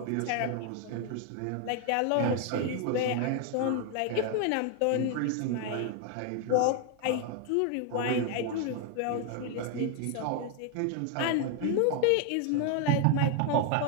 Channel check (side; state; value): both; different; correlation 0.00